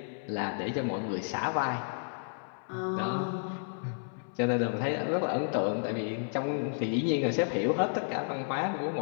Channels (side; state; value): right; silent; 57 dB below the other